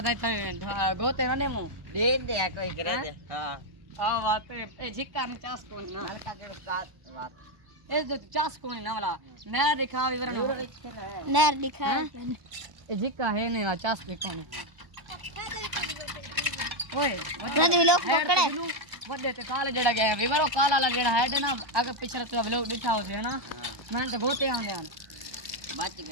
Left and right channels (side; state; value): left; late; 1.2 ms